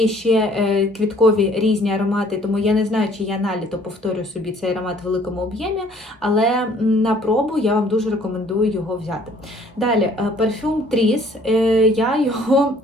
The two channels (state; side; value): normal; both; correlation 0.57